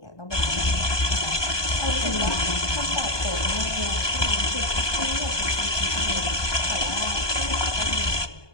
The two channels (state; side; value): late; right; 1.2 ms